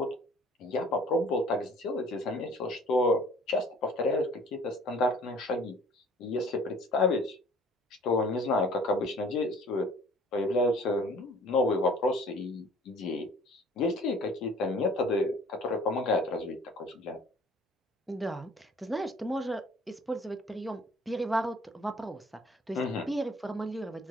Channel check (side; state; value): both; normal; correlation 0.52